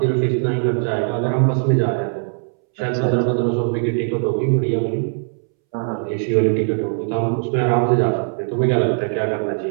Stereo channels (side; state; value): left; silent; 66 dB below the other